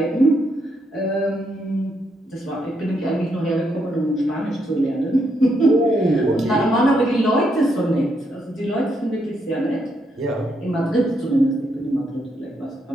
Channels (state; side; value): normal; both; correlation 0.78